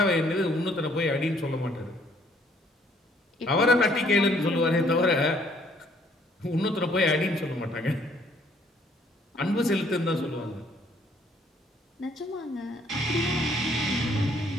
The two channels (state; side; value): normal; both; correlation 0.64